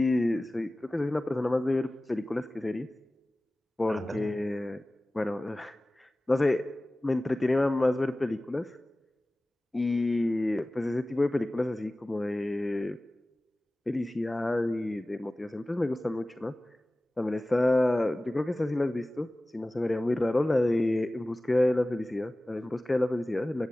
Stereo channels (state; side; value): normal; both; correlation 0.97